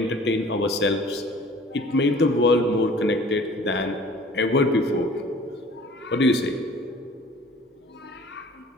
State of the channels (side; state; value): both; normal; correlation 0.49